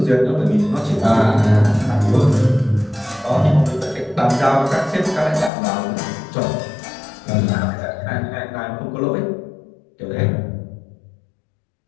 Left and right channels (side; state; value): right; drops out; at 5.5 s